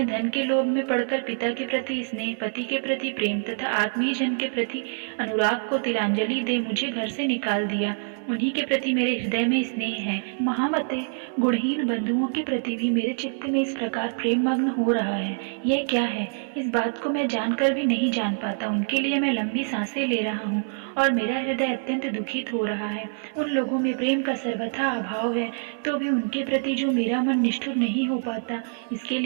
धन के लोभ में पड़कर पिता के प्रति स्नेह, पति के प्रति प्रेम तथा आत्मीय जन के प्रति अनुराग को तिलांजलि दे मुझे घर से निकाल दिया, उन्हीं के प्रति मेरे हृदय में स्नेह है। महामते, गुणहीन बंधुओं के प्रति भी मेरे चित्त में इस प्रकार प्रेम मग्न हो रहा है। यह क्या है? इस बात को मैं जानकर भी नहीं जान पाता। उनके लिए मैं लंबी सांसें ले रहा हूँ और मेरा हृदय अत्यंत दुखित हो रहा है। उन लोगों में प्रेम का सर्वथा अभाव है, तो भी उनके प्रति जो मेरा मन निष्ठुर नहीं हो पाता, इसके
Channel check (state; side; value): silent; left; digital silence